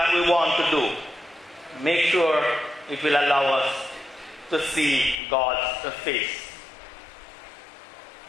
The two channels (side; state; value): right; drops out; at 5.2 s